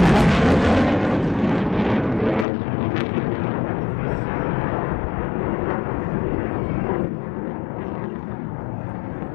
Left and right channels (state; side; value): drops out; right; at 2.5 s